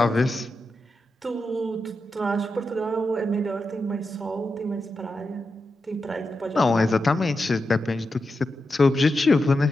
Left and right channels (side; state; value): both; normal; correlation 0.88